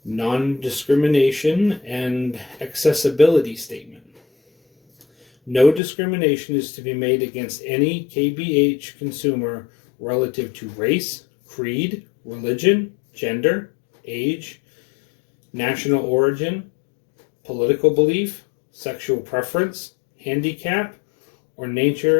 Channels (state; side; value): drops out; right; at 5.8 s